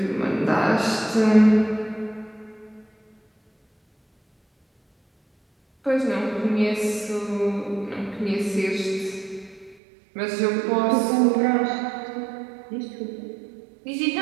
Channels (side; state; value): left; drops out; at 9.8 s